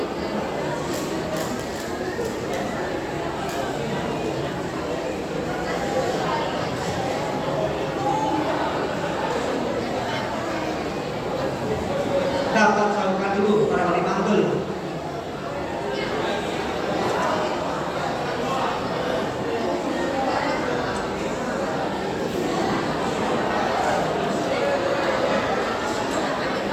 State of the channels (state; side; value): identical; both; correlation 1.00